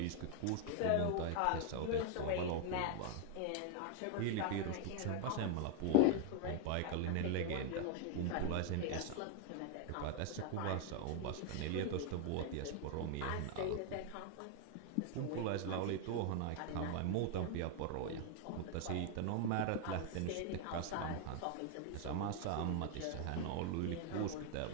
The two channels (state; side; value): different; both; correlation 0.00